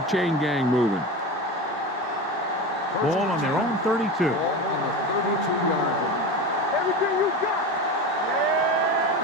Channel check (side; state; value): both; normal; correlation 0.26